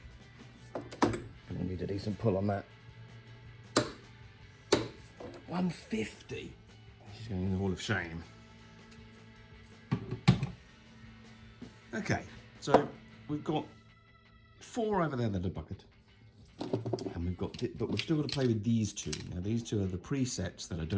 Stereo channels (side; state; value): both; identical; correlation 1.00